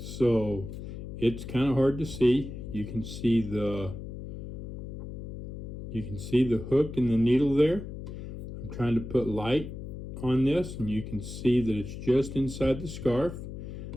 it's kind of hard to see. You can see the hook and the needle there. I'm trying to put light on this, and you can see that it's just inside the scarf.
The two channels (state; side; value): noise; left; hum, 9 dB below the sound